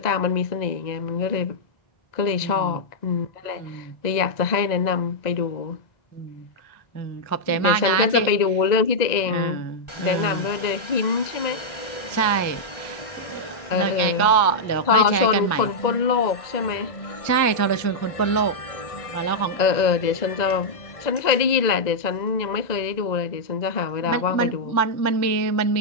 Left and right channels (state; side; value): late; right; 1.9 ms